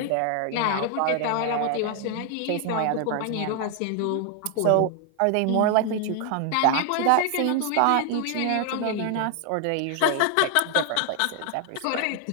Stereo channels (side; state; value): both; different; correlation 0.00